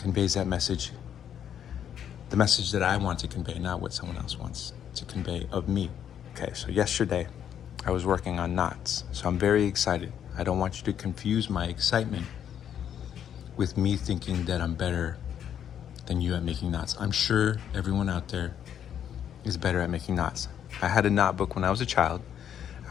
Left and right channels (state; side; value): quieter; right; 9.3 dB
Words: that message. The message that I want to convey, not what someone else wants to convey of me. Okay, so yesterday I was working on knots, so I'm very excited. I don't want you to confuse my excitement with me thinking that I'm better than you at making knots. I'm sure everyone out there is better at making knots. I had a knot book when I was a child.